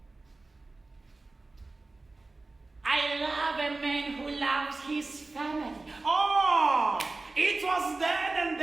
I love a man who loves his family. oh, it was then and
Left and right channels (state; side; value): quieter; left; 3.3 dB